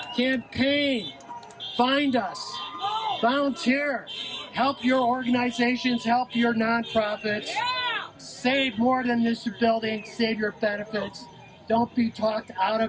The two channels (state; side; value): identical; both; correlation 1.00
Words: Campaign. Find us. Volunteer. Help your organizations. Help your nonprofits. Save more than this building. Save your benefits. Don't be talked out